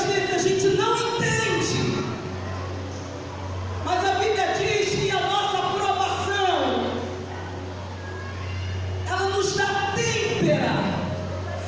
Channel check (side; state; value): both; identical; correlation 1.00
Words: vezes a gente não entende. Mas a Bíblia diz que a nossa aprovação, ela nos dá têmpera,